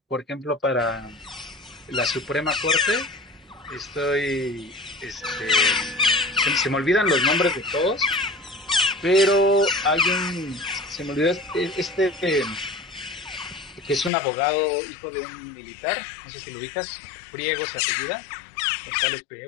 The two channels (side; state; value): right; drops out; at 14.1 s